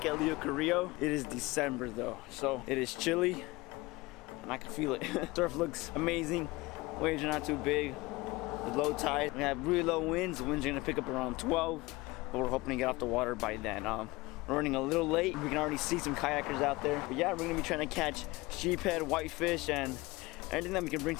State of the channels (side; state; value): right; quieter; 21.8 dB